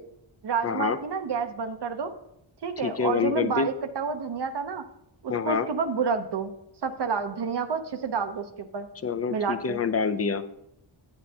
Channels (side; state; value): both; normal; correlation 0.00